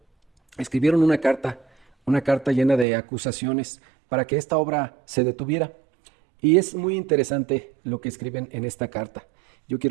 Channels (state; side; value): drops out; left; at 2.9 s